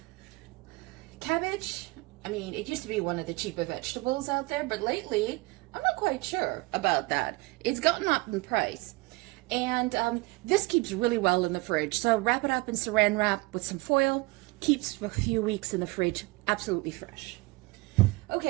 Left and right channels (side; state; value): left; quieter; 23.5 dB